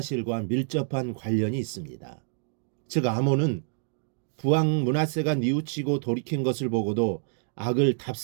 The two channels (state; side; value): silent; left; digital silence